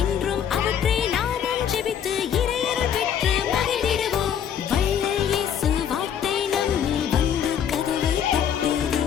என்றும் அவற்றை நாமும் ஜெபித்து இறையருள் பெற்று மகிழ்ந்திடுவோம். வள்ளல் இயேசு வார்த்தை நம்மில் வந்து கதவை தட்டுதே.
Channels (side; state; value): right; quieter; 8.6 dB